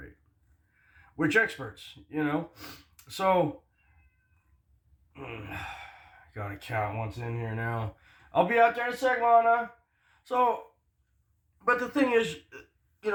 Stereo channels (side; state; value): both; identical; correlation 1.00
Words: Which experts, you know? So, gotta count what's in here now. I'll be out there in a sec, Lana. So, but the thing is,